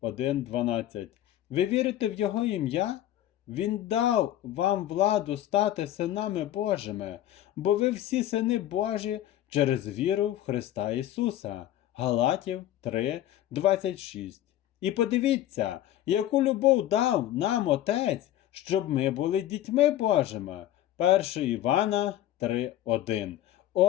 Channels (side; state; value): right; quieter; 13.0 dB